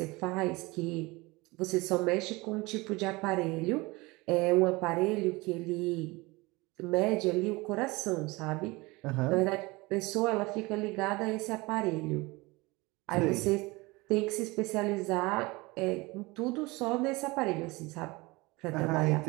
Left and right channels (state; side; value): quieter; left; 23.3 dB